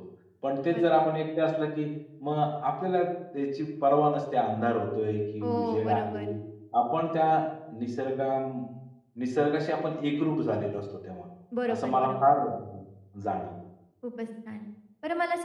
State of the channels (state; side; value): identical; both; correlation 1.00